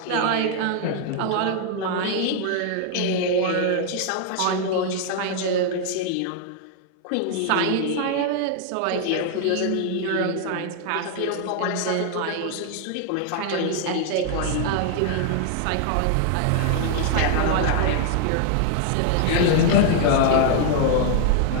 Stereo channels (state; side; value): different; both; correlation 0.00